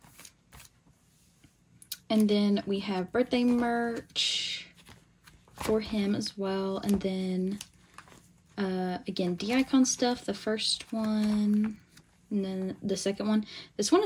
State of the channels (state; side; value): identical; both; correlation 1.00